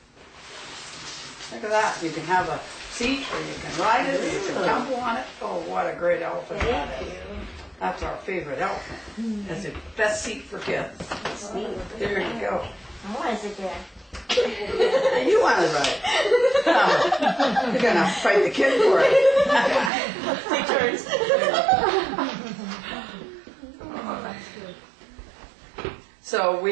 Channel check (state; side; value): drops out; left; at 19.9 s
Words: Look at that. You can have a seat or you can ride it or you can tumble on it. Oh, what a great elephant that is. That's our favorite elephant. That's the best seat for kids. Sweet. There you go. I want to sit there. You want to ride. You're going to fight the kid for it. Take turns. So